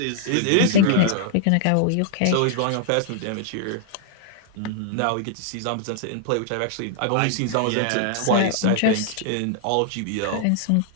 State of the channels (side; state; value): both; different; correlation -0.01